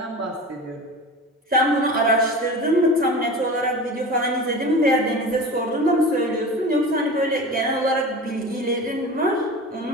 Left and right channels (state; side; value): normal; both; correlation 0.33